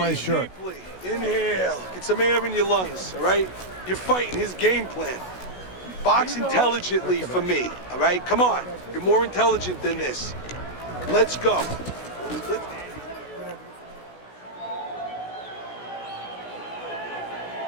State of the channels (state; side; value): late; right; 16 ms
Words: shirt. Deeply. Inhale. Get some air in your lungs, all right? You're fighting his game plan. Box intelligently for me, all right? Come on. You're more intelligent than this. Let's go.